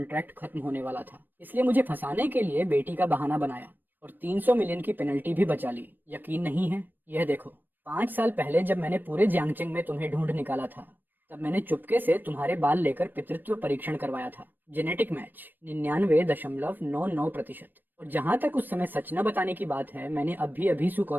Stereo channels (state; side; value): late; left; 0.092 ms